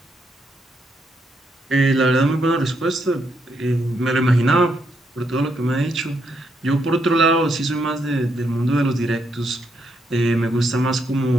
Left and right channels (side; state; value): both; normal; correlation 0.77